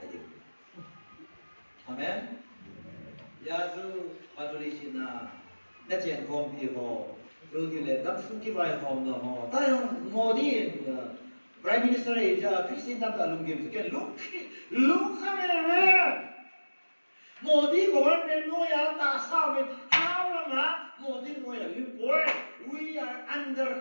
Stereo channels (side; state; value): both; inverted; correlation -1.00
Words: amen, ya tu paduli sina, nanti kompi ho. 여기에 남순기 바이 홈도 뭐 다른 모든 프라임 미니스터의 이제 크리스틴 담다 룽김스 게 룩하면 모든 government 노야 다 싸우면 하나마 모든 노야 we are under